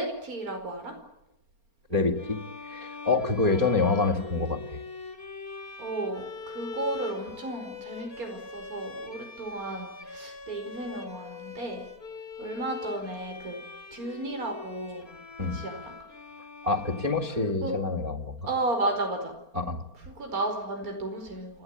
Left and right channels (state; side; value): late; left; 4.3 ms